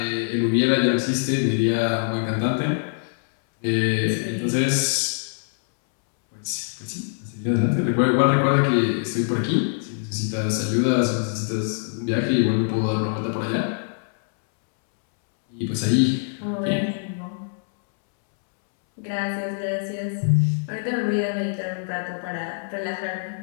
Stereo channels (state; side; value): silent; right; 63 dB below the other